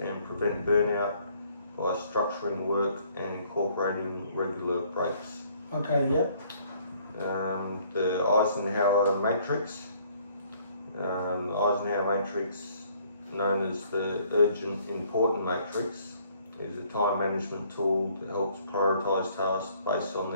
prevent burnout by structuring work and incorporating regular breaks. The Eisenhower matrix. The Eisenhower matrix, known as the urgent important matrix, is a time management tool that helps prioritise tasks based on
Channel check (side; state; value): both; inverted; correlation -0.62